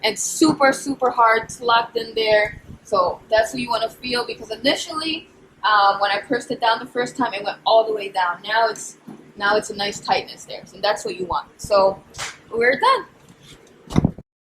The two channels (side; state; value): both; identical; correlation 1.00